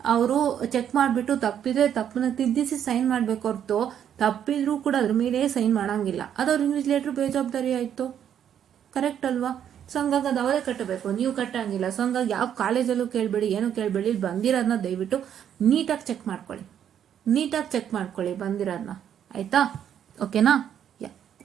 ಅವರು ಚೆಕ್ ಮಾಡಿಬಿಟ್ಟು ತಪ್ಪಿದ್ರೆ ತಪ್ಪನ್ನ ತಿದ್ದಿಸಿ ಸೈನ್ ಮಾಡಬೇಕು ಹೊರತು, ತಪ್ಪಿದ್ರೂ ಕೂಡ ಅದ್ರ ಮೇಲೆ ಸೈನ್ ಮಾಡೋಂಗಿಲ್ಲ. ಅದು ಅವ್ರ ಇನ್ವಿಜಿಲೇಟರ್ ಬೇಜವಾಬ್ದಾರಿ ಆಯಿತು. ಕರೆಕ್ಟ್ ಅಲ್ವಾ? ಸೊ ಹಂಗಾಗಿ ಅದು ಅವರೇ ಕಟ್ಟಬೇಕು, ನೀವು ಕಟ್ಟಂಗಿಲ್ಲ. ಸೊ ಹಂಗಾಗಿ ಯಾವ ಕಾಲೇಜಲ್ಲೂ ಕೇಳಬೇಡಿ, ಏನೂ ಕೇಳಬೇಡಿ. ಇಲ್ಲಿ ಬಂದಿರೋದನ್ನ ದಯವಿಟ್ಟು ನೀಟಾಗಿ ಚೆಕ್ ಮಾಡ್ಕೊಳ್ಳಿ ಬಂದಿರೋದನ್ನ. ಆಯಿತಾ? ಓಕೆನಾ? ಯಾ.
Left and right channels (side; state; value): left; quieter; 9.4 dB